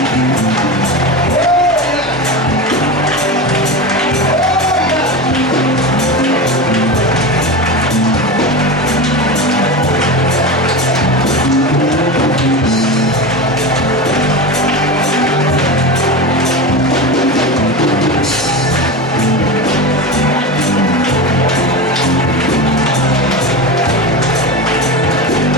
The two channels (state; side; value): normal; both; correlation 0.23